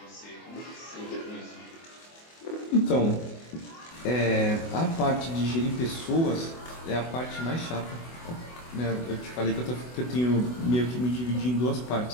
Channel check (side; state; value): right; late; 24 ms